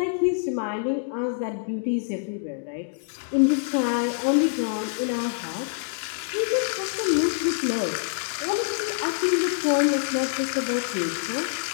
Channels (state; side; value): silent; right; digital silence